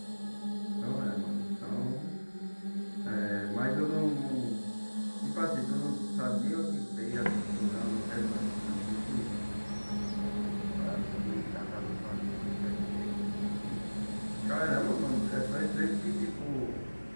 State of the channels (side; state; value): both; inverted; correlation -1.00